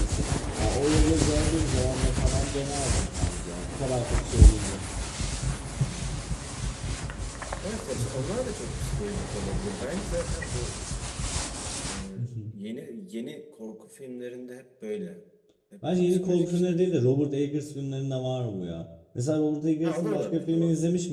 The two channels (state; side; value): identical; both; correlation 1.00